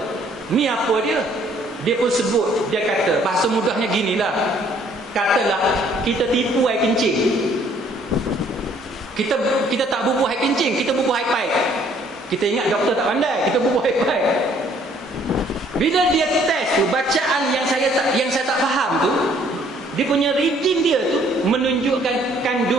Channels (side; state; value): both; normal; correlation 0.62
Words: ni apa dia? Dia pun sebut, dia kata bahasa mudahnya ginilah. Katalah kita tipu air kencing. Kita tak bubuh air kencing, kita bubuh air paip. Kita ingat doktor tak pandai, kita bubuh air paip. Bila dia test tu, bacaan yang saya tak faham tu, dia punya reading dia tu menunjukkan